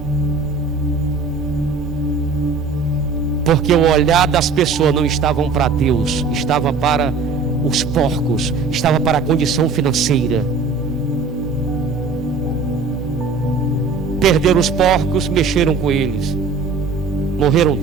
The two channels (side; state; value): left; quieter; 4.6 dB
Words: Porque o olhar das pessoas não estava para Deus, estava para os porcos, estava para a condição financeira. Perderam os porcos, mexeram com eles, morreram